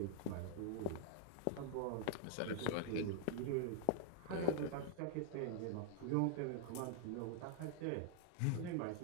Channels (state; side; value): different; both; correlation -0.01